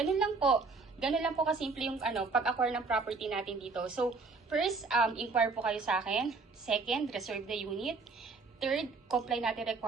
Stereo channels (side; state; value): left; quieter; 4.2 dB